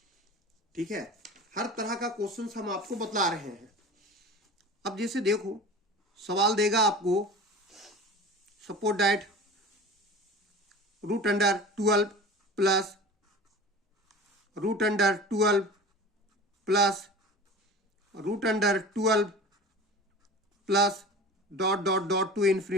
ठीक है, हर तरह का क्वेश्चंस हम आपको बतला रहे हैं। अब जैसे देखो सवाल देगा आपको, suppose that root under 12 plus root under 12 plus root under 12 plus dot dot dot to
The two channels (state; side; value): normal; both; correlation 0.37